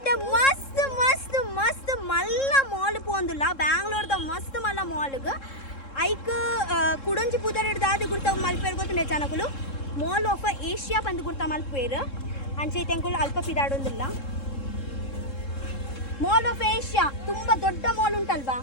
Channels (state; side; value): late; right; 3.7 ms